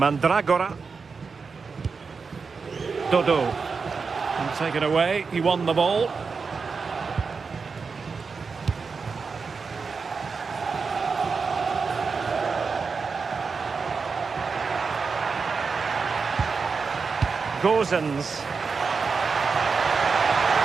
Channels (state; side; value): quieter; left; 5.0 dB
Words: Dodo. And taken away. He won the ball. Gozens.